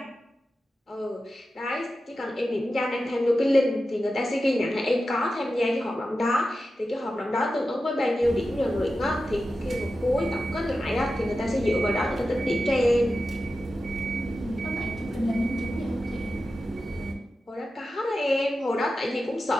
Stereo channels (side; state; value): both; normal; correlation 0.92